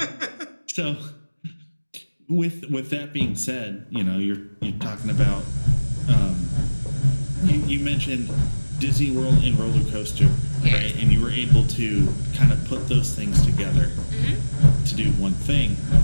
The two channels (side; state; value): both; inverted; correlation -1.00